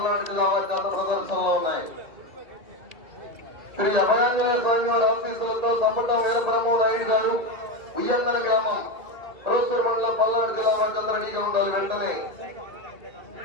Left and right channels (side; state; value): left; late; 1.8 ms